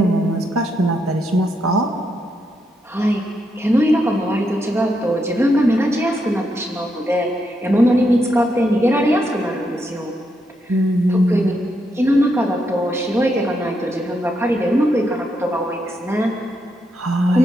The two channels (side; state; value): both; normal; correlation 0.80